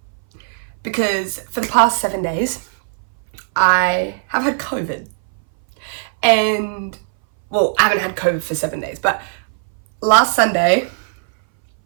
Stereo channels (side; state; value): left; silent; 62 dB below the other